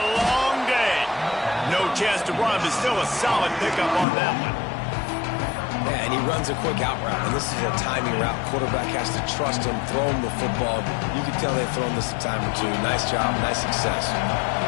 long day. No chance to run, but still a solid pickup on that one. Yeah, and he runs a quick out route, and this is a timing route. Quarterback has to trust him, throw him the football. You can tell they've thrown this a time or two. Nice job, nice success.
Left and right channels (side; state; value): right; drops out; at 4.0 s